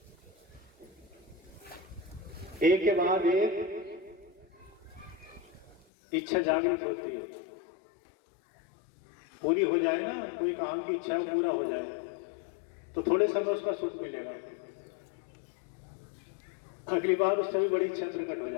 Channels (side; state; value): right; drops out; at 5.9 s